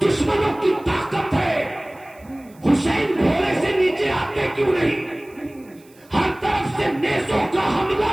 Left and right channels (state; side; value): noise; right; hiss, 29 dB below the sound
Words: की ताकत है, हुसैन घोड़े से नीचे आते क्यों नहीं? हर तरफ से नेज़ों का हमला